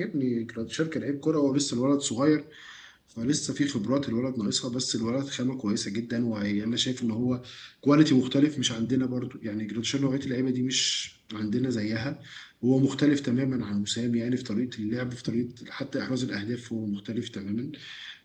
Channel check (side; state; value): both; identical; correlation 1.00